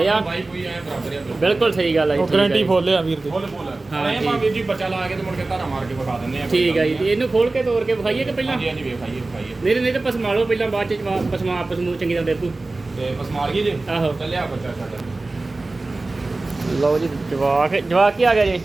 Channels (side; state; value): left; quieter; 3.2 dB